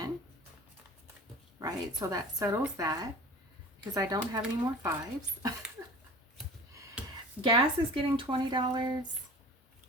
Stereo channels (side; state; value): both; normal; correlation 0.41